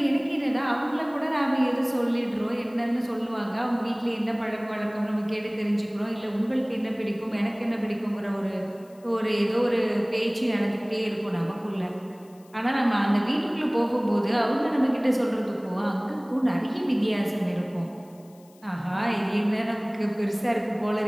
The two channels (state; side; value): noise; left; hiss, 29 dB below the sound